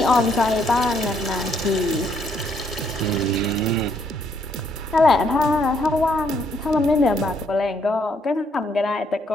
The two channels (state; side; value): normal; both; correlation 0.70